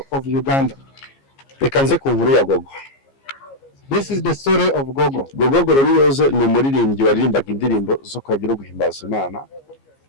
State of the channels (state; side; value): late; right; 15 ms